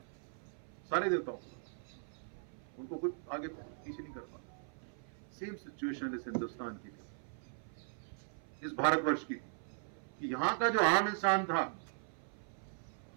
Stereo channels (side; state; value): left; silent; 52 dB below the other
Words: सारे देवताओं, उनको कोई आगे पीछे नहीं कर पाता। सेम सिचुएशन इस हिंदुस्तान की थी, इस भारतवर्ष की, कि यहाँ का जो आम इंसान था,